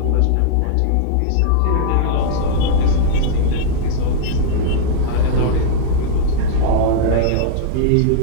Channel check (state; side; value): different; both; correlation -0.01